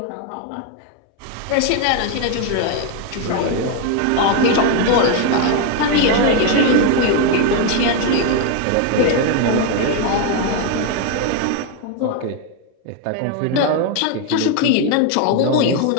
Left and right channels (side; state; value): both; different; correlation 0.01